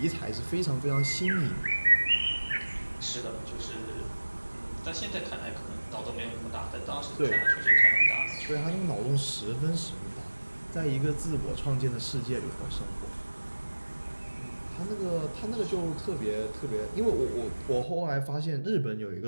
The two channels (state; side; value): inverted; both; correlation -1.00